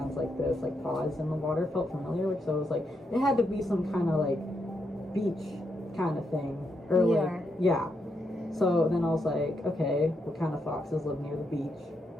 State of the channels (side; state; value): both; normal; correlation 0.81